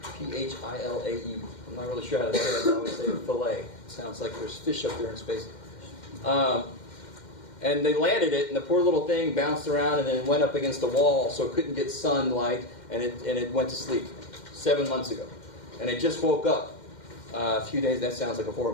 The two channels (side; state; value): right; late; 2.1 ms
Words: Philae. I'm not really sure how to say it, but I always say Philae. It sounds like there's fish up there in space. And they landed it, and the poor little thing bounced around and then went up against the wall, so it couldn't get sunlight, and it went to sleep 7 months ago. And it just woke up a few days. That sounds like a horror